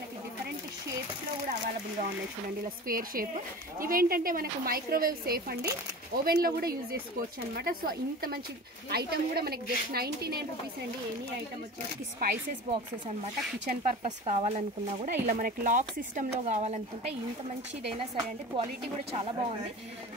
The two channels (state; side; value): normal; both; correlation 0.35